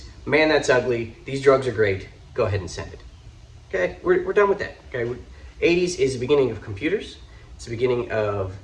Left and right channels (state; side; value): identical; both; correlation 1.00